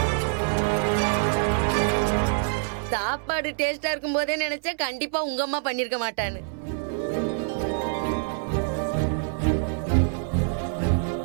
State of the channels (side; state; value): left; silent; 61 dB below the other